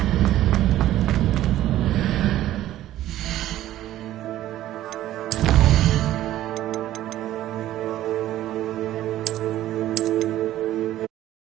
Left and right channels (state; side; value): quieter; left; 13.7 dB